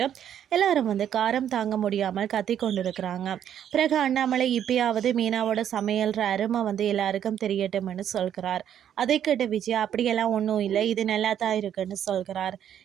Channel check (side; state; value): left; quieter; 9.8 dB